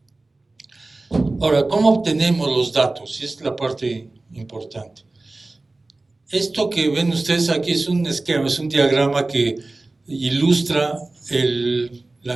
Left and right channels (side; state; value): left; quieter; 3.1 dB